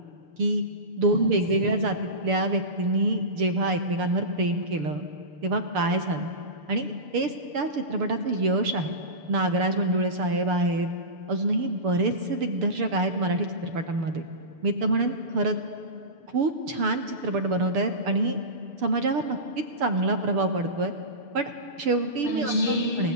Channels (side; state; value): left; late; 6.8 ms